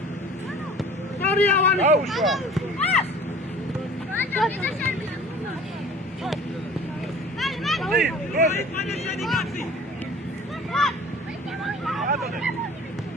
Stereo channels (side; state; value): both; normal; correlation 0.46